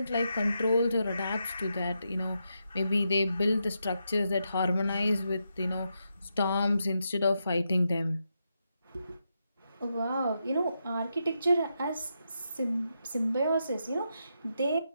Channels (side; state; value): both; inverted; correlation -0.84